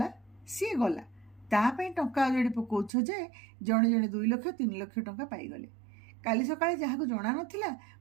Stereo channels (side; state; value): left; drops out; at 2.9 s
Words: सी गला तापाई टंका अजाड़ी पकाउछ जे जड़े जड़े 2 लाख 3 लाख टंका पाईगले काली सकाळे जहाँ को जना नथिला